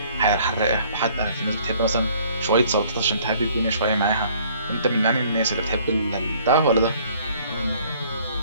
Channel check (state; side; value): inverted; both; correlation -0.58